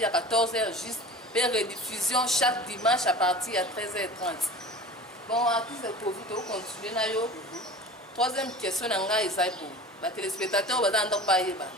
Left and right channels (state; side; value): normal; both; correlation 0.37